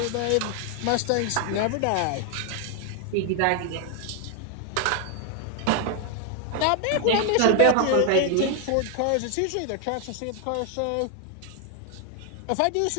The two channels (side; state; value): both; different; correlation 0.01